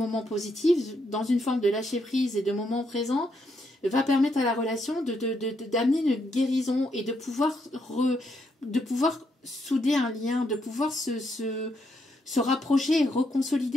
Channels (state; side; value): normal; both; correlation 0.77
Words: positifs dans une forme de lâcher prise et de moments présents, va permettre à la relation d'amener une guérison et de pouvoir souder un lien, de pouvoir se rapprocher,